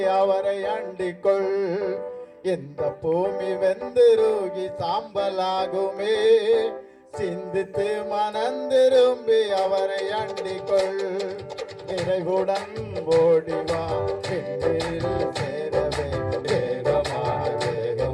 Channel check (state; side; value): identical; both; correlation 1.00